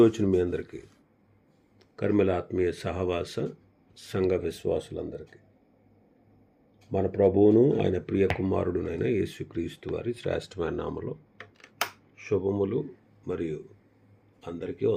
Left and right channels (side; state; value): both; identical; correlation 1.00